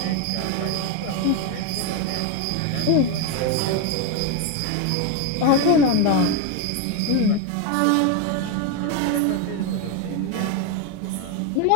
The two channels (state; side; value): different; both; correlation 0.02